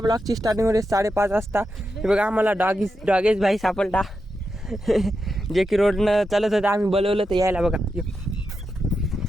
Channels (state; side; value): normal; both; correlation 0.87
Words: स्टार्टिंग होते 5:30 वाजता. हे बघा आम्हाला डॉगेज भाई सापडला जे की रोडनं चालत होतं आम्ही बोलवलं तर यायला बघा